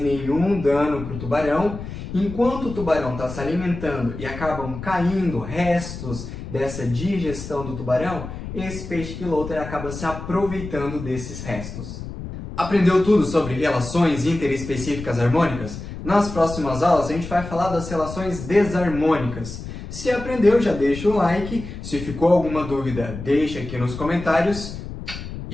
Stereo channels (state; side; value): noise; left; rumble, 9 dB below the sound